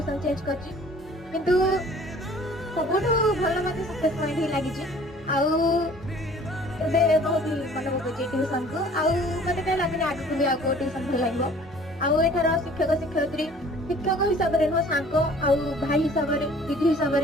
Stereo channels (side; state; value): both; normal; correlation 0.51